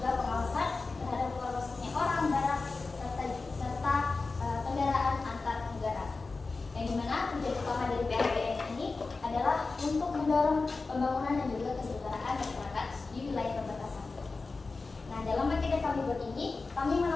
pengawasan terhadap keluar masuknya orang, barang, serta kendaraan antar negara. Yang dimana tujuan utama dari PLBN ini adalah untuk mendorong pembangunan dan juga kesejahteraan masyarakat di wilayah perbatasan. Nah, dalam paket yang kami buat ini, kami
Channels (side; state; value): right; quieter; 3.9 dB